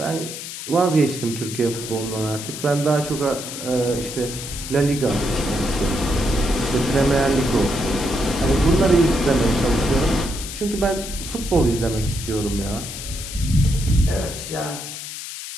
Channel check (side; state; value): left; noise; hiss, 9 dB below the sound